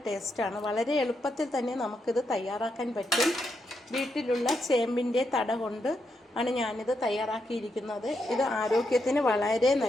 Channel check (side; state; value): both; normal; correlation 0.82